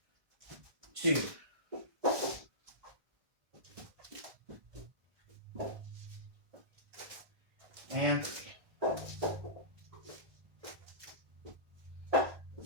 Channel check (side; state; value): left; late; 1.6 ms